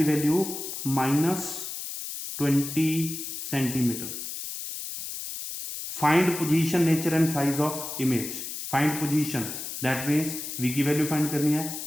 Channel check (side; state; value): left; noise; hiss, 7 dB below the sound